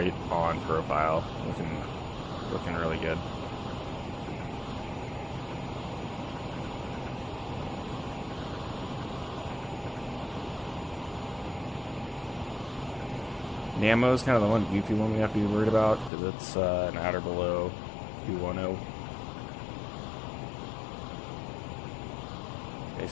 on profile. Looking really good. Namo is kind of the one goofy one we have to be worried about because it's an at or below 210.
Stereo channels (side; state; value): right; drops out; at 16.1 s